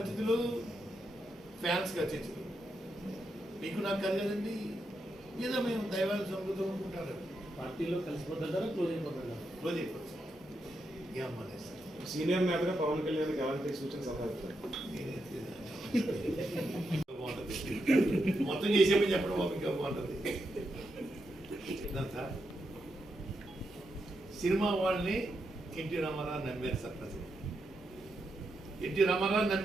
అతిథులు? ఫ్యాన్స్కి అతిథులు. మీకు నాకు కలగదండి. ఏదో మేము దైవాన్ని సంబృతం అనుకుంటారు. పార్టీలో కలిసిపోతారా క్లోజ్ అయిపోతారా? క్లోజ్ అయిపోతుంది సార్. ఏమలేదు సార్. సీనియర్ నేతగా పవన్ కళ్యాణ్ ఎలాంటి సూచన సలహా బాగుంటుంది. మొత్తం చేసేమని చెప్పడం ఇంకా బాగుంటుంది సార్. సినిమా వాళ్ళని ఎన్టీ రామారావు నమ్మారు సార్. ప్రజలు ఎన్టీ రామారావు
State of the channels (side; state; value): both; normal; correlation 0.84